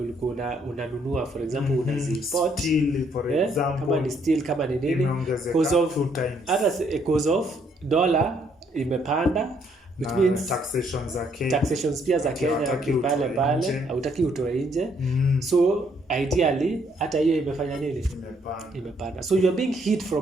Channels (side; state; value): both; normal; correlation 0.69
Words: unanunua, for example unaziimport, steel for example, kama ni steel, kama ni nini, because of dollar imepanda, which means taxations pia za Kenya pale hautaki utoe nje. So ideally hata hiyo imefanya nini, imepanda. So you are being hit